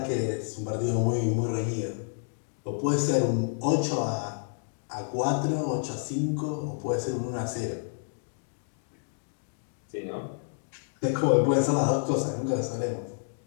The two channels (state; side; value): silent; right; digital silence